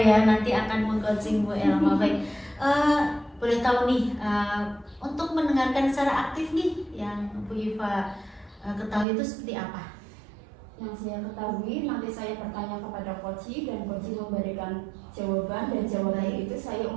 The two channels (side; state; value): left; drops out; at 9.1 s